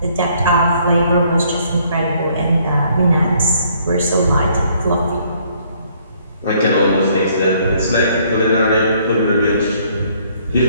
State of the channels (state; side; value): inverted; both; correlation -0.64